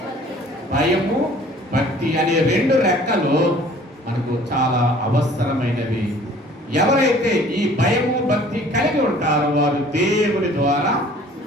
భయము భక్తి అనే 2 రెక్కలు మనకు చాలా అవసరమైనవి. ఎవరైతే ఈ భయము భక్తి కలిగి ఉంటారో వారు దేవుని ద్వారా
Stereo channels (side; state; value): both; normal; correlation 0.52